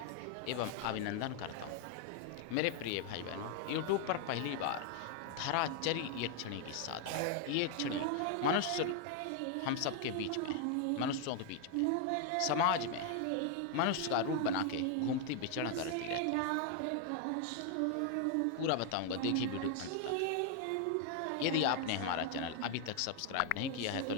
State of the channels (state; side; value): different; both; correlation 0.00